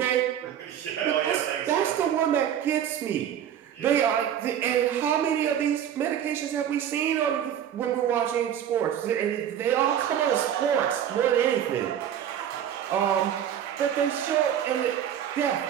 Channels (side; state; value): left; quieter; 9.8 dB